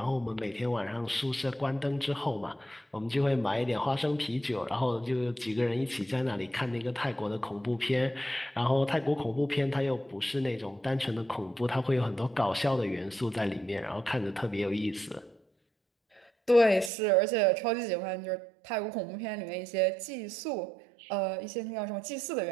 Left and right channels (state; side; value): drops out; left; at 16.9 s